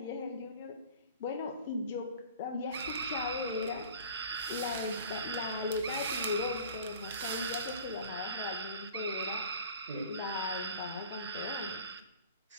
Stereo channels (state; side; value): inverted; both; correlation -0.43